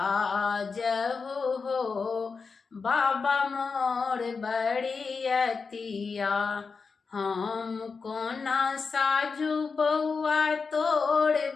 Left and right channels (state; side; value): quieter; right; 4.9 dB